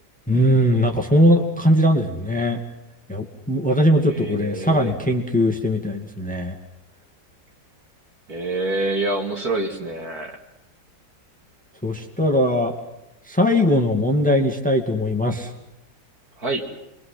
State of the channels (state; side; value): normal; both; correlation 0.48